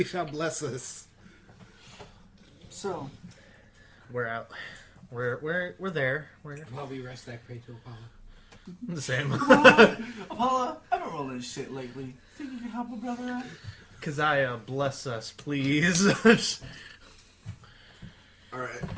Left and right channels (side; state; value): both; identical; correlation 1.00